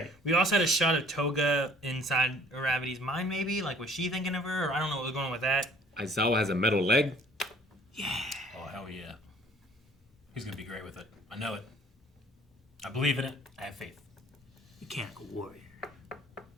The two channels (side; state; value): both; normal; correlation 0.54